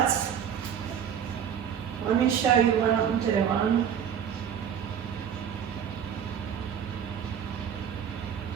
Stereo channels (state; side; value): quieter; left; 8.5 dB